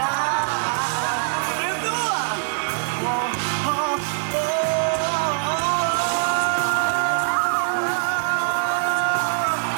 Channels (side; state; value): left; silent; digital silence